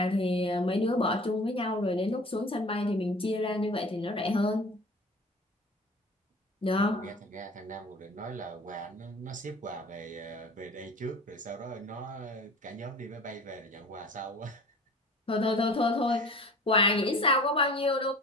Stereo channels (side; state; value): both; normal; correlation 0.42